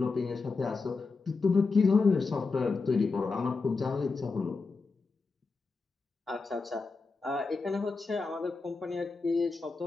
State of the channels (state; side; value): quieter; right; 4.2 dB